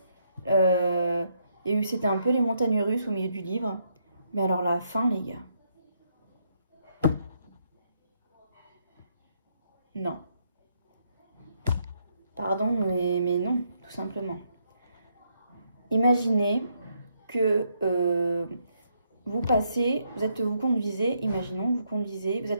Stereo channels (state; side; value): inverted; both; correlation -0.76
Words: C'était un peu les montagnes russes au milieu du livre. Mais alors la fin, les gars. Non. Pardon, mais non, tout simplement. Imaginez que vous conduisez, imaginons, vous conduisez, vous